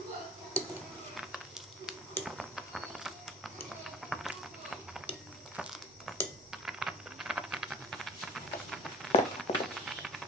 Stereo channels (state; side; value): normal; both; correlation 0.46